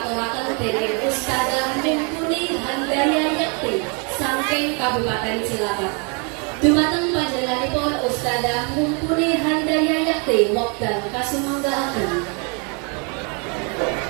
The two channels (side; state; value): left; quieter; 35.2 dB